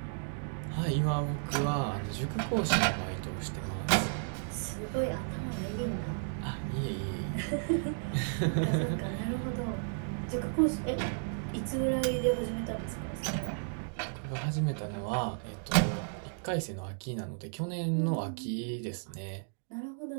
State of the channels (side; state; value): left; silent; digital silence